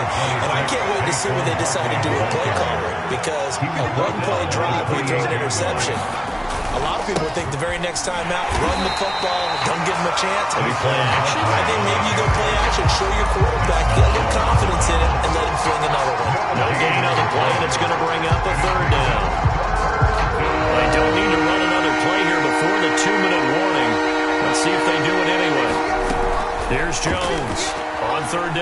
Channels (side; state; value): both; identical; correlation 1.00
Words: And I can't wait to see what they decide to do with play calling, because a one-play drive where you throw an interception, a lot of people think the very next time out, run the football, don't give them a chance. Maybe play action. I think maybe you go play action, show your quarterback, get a little confidence in it, and let him fling another one. No gain on the play, and it's going to bring up a 3rd down. They don't need to run another play here before the 2-minute warning. Let's see if they do it anyway. Here's Jones on 3rd